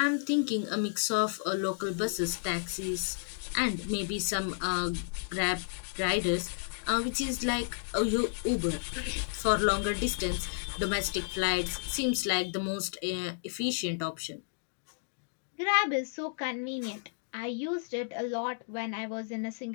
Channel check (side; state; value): right; silent; digital silence